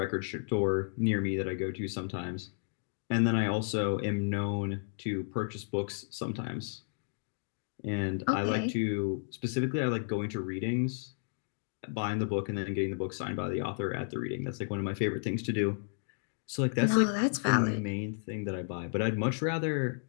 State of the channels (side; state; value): right; silent; digital silence